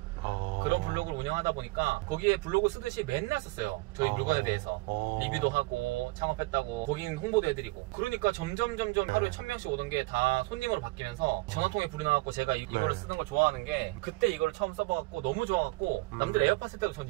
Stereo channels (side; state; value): left; quieter; 23.1 dB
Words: 그런 블로그를 운영하다 보니까 거기에 블로그 쓰듯이 맨날 썼어요. 저희 물건에 대해서 리뷰도 하고 창업했다고 고객 홍보도 해드리고. 그러니까 점점 하루에 1000명씩 오던 게 다 손님으로 바뀌면서 전화통에 불이 나갖고 제가 이거를 쓰는 걸 좋아하는 게 그때 이거를 처음 써봐갖고 너무 좋아갖고 남들 에어팟 쓸 때도 전